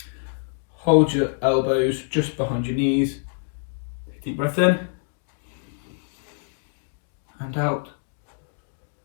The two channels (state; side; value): silent; right; digital silence